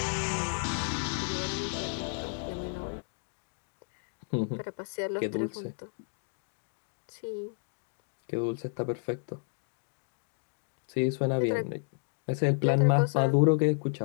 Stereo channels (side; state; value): right; silent; digital silence